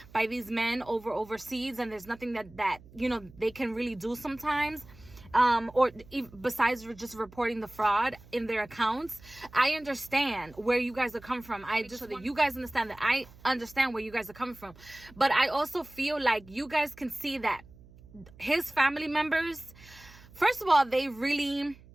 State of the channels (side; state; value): right; noise; hum, 22 dB below the sound